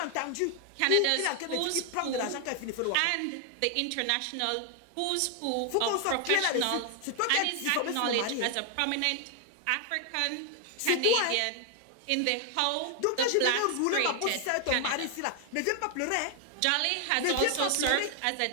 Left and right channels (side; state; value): both; different; correlation 0.00